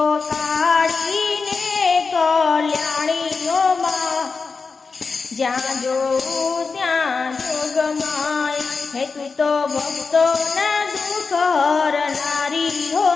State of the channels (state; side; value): quieter; right; 4.7 dB